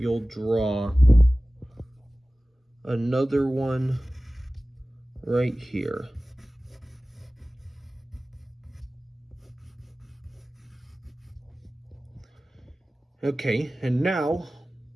draw another one right here. Okay, and now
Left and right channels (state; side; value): normal; both; correlation 0.97